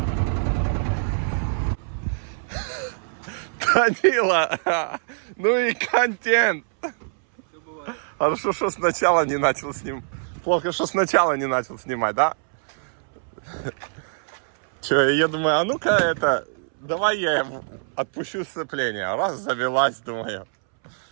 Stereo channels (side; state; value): left; silent; 63 dB below the other